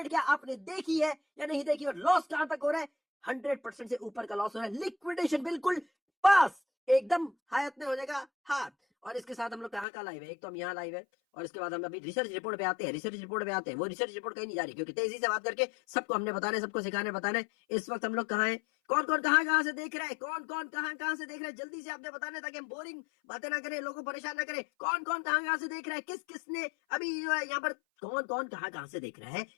क्या आपने देखी है या नहीं देखी, और लॉस कहां तक हो रहा है, 100% से ऊपर का लॉस हो रहा है, लिक्विडेशन बिल्कुल पास, एकदम हायत में हो जाएगा हाथ। और इसके साथ हम लोग कहाँ का लाइव है, एक तो हम यहाँ लाइव है, और इसके बाद हम अभी रिसर्च रिपोर्ट पे आते हैं, रिसर्च रिपोर्ट पे आते हैं, वो रिसर्च रिपोर्ट कहीं नहीं जा रही, क्योंकि तेजी से बात करके सबको हमने बताना है, सबको सिखाने बताना है। इस वक्त हम लोग कहाँ हैं, कौन कौन कहाँ कहाँ से देख रहा है, कौन कौन कहाँ कहाँ से देख रहा है, जल्दी से आपने बताना है ताकि हम बोरिंग बातें ना करें, लोगों को परेशान ना करें, कौन कौन कहाँ कहाँ से देख रहा है, किस किसने अभी जो है यहाँ पर कौन कौन कहाँ कहाँ से देख रहा है,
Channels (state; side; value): drops out; right; at 9.9 s